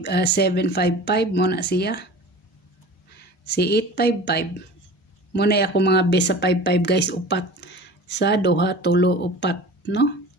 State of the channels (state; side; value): normal; both; correlation 0.39